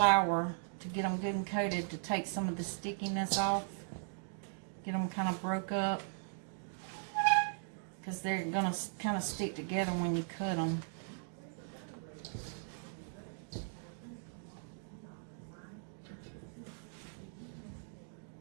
to get them good and coated, to take some of the stickiness off, get them kind of broke up, because they're going to kind of stick together when you cut them.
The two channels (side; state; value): left; silent; digital silence